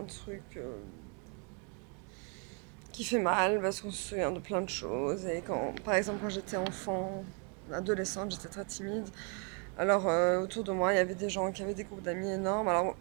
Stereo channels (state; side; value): quieter; left; 37.0 dB